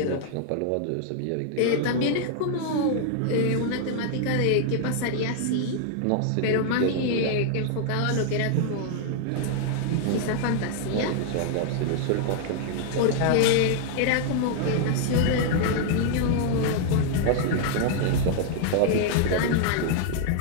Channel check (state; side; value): different; both; correlation -0.01